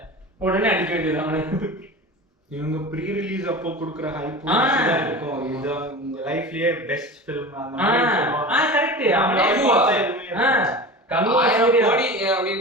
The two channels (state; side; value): normal; both; correlation 0.32